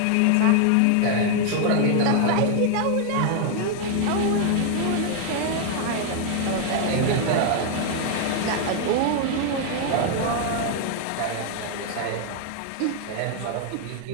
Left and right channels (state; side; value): different; both; correlation 0.00